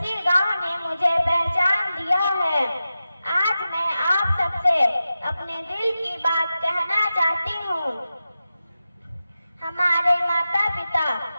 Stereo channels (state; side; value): inverted; both; correlation -0.92